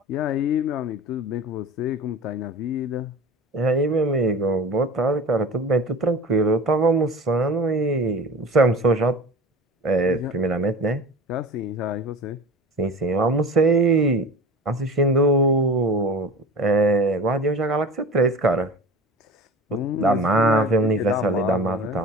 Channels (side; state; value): both; normal; correlation 0.36